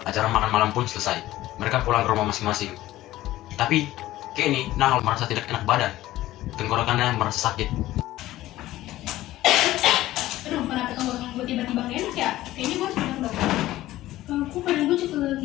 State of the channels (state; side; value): quieter; right; 15.6 dB